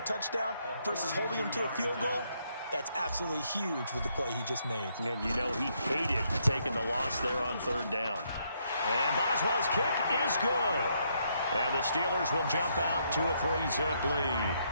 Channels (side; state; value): both; inverted; correlation -0.74